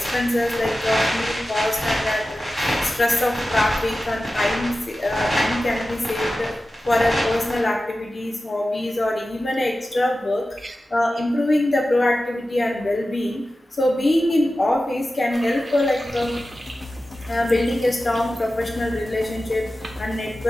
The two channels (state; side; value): normal; both; correlation 0.94